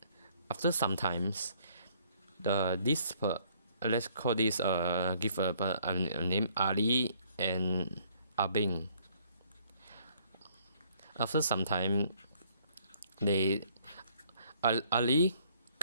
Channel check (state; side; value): inverted; both; correlation -0.64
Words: after some times, let's call this give a name, Ali and Abing. After some time, Ali